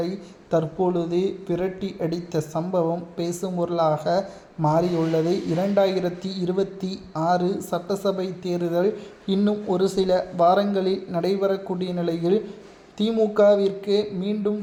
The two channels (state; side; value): identical; both; correlation 1.00